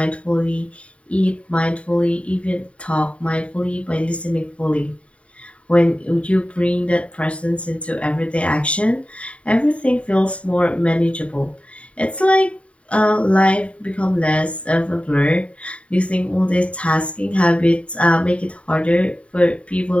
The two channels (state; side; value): late; right; 0.063 ms